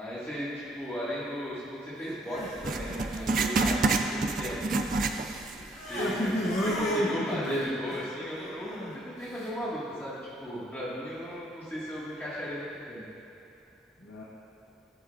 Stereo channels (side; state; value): both; normal; correlation 0.67